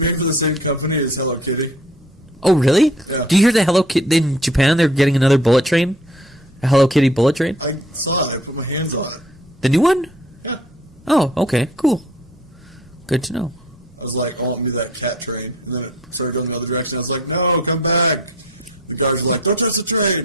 for the same company as Hello Kitty? Oh, really? Yeah. Do you hear the Hello Kitty in Japan? They're getting another bullet train? A Hello Kitty bullet train? I saw it. I put my hands on it. The new one? Yeah. Oh, okay, cool. Good to know. I was like, I want me that cat train. And then it started going another direction. I was like, no, come back. The guards were like, don't touch the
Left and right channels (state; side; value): normal; both; correlation 0.52